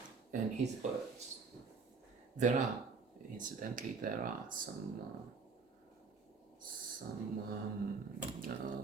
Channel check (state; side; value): quieter; left; 4.9 dB